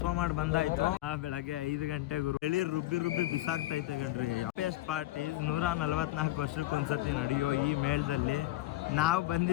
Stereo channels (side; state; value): right; quieter; 16.6 dB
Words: ಮಾಡಿ ಬಂದಾಯ್ತು. ಬೆಳಗ್ಗೆ 5 ಗಂಟೆ ಗುರು ಎಳಿ ರುಬ್ಬಿ ಬಿಸಾಕ್ತೈತೆ ಗಣ್ರಿ. ಎಸ್ಟ್ ಪಾರ್ಟಿ 144 ವರ್ಷಕ್ಕೊಂದ್ಸತಿ ನಡೆಯೋ ಈ ಮೇಳದಲ್ಲಿ ನಾವು